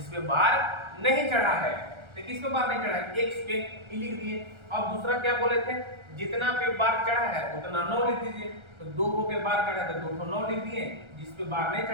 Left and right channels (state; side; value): late; left; 1.3 ms